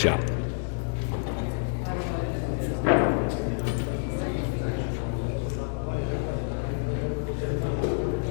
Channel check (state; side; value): silent; right; digital silence